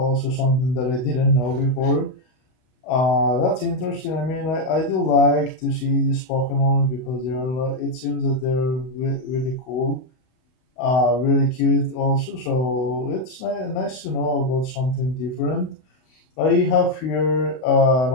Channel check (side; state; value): right; late; 32 ms